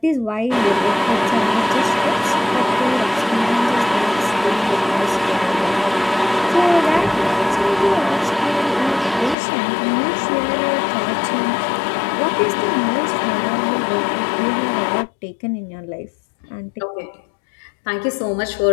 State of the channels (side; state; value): right; drops out; at 9.3 s